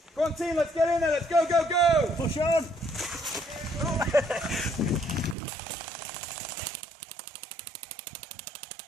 Go on, team. Let's get in there. Let's go, go, go. Push on.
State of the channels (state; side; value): drops out; left; at 5.4 s